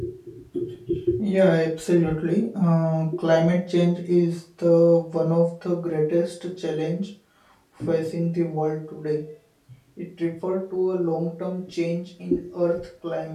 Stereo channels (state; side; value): identical; both; correlation 1.00